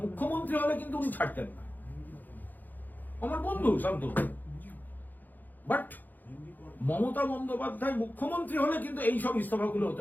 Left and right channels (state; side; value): late; right; 0.085 ms